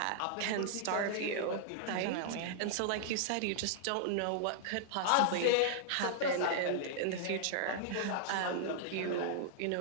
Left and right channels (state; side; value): different; both; correlation -0.01